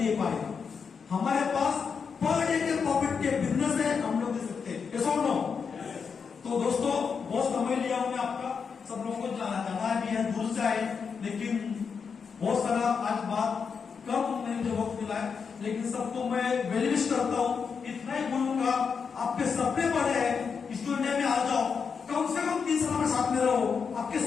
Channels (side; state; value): right; quieter; 6.0 dB